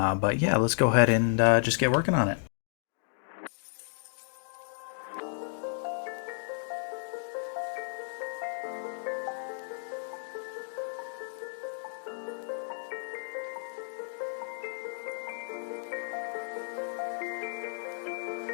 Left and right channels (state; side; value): silent; right; digital silence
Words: yeah, let's go ahead and just get working on it.